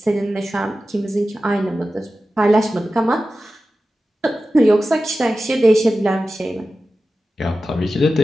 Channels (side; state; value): both; normal; correlation 0.94